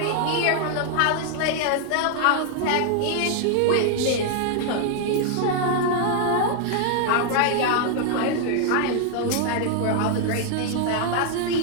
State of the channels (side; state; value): both; different; correlation 0.00